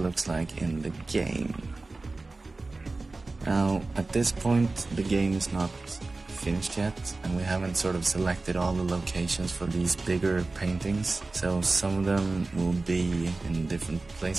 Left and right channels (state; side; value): quieter; left; 3.4 dB